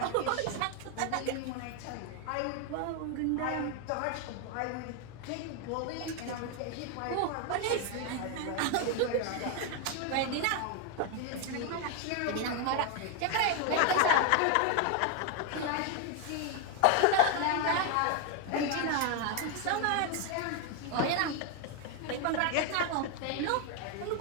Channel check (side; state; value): both; different; correlation 0.01